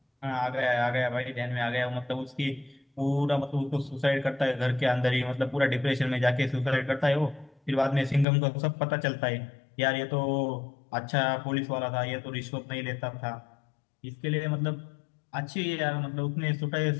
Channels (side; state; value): right; drops out; at 8.2 s